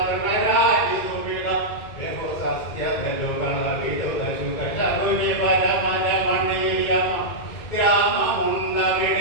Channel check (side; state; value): right; late; 2.2 ms